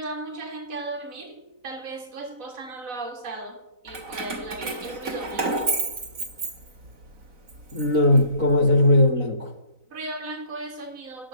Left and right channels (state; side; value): late; left; 4.0 ms